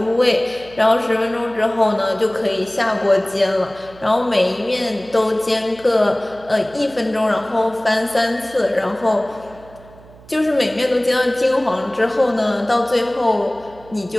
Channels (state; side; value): noise; right; hum, 23 dB below the sound